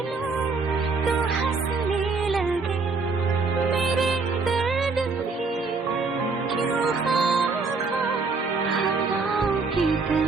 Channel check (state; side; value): quieter; left; 4.3 dB